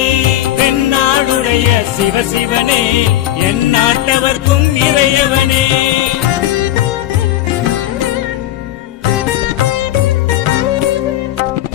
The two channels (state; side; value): quieter; right; 13.5 dB